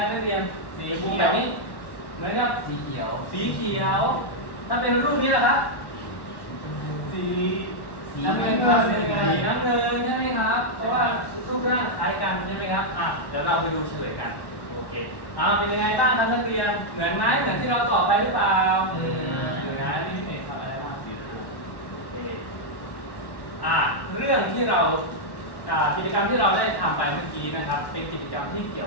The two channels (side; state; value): right; late; 1.1 ms